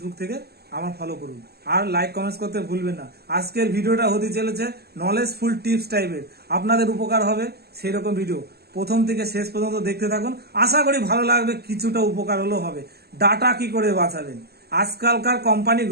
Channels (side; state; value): left; late; 0.46 ms